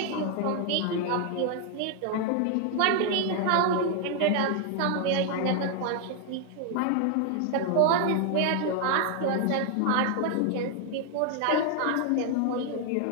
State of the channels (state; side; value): different; both; correlation 0.00